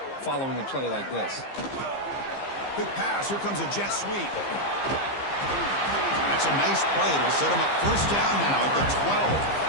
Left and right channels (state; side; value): late; right; 15 ms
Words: following a play like this. Quick pass. Here comes a jet sweep. That's a nice play. It'll set him up first down now at the 12.